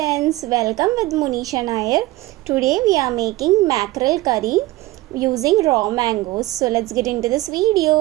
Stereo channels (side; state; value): left; quieter; 18.6 dB